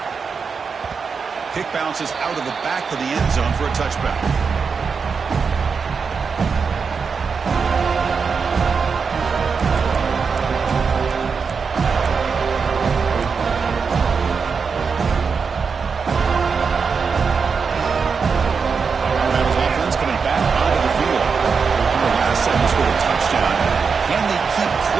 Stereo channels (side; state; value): left; quieter; 5.5 dB